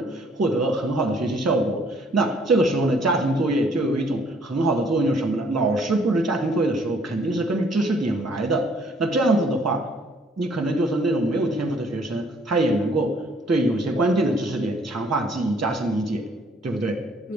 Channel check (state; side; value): normal; both; correlation 0.62